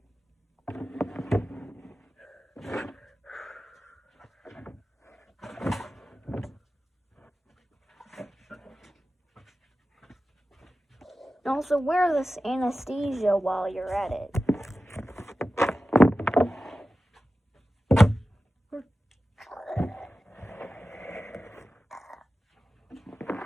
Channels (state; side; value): normal; both; correlation 0.94